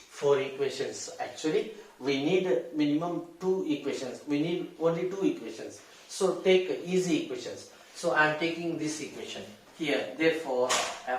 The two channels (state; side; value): identical; both; correlation 1.00